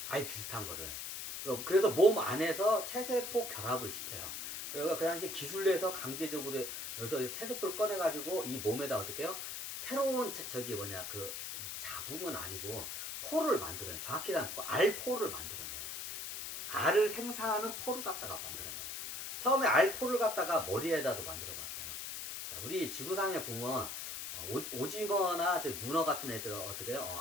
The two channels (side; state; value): left; noise; hiss, 6 dB below the sound